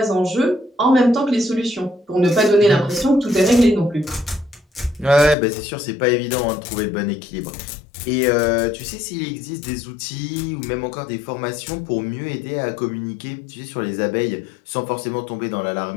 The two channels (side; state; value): right; drops out; at 5.4 s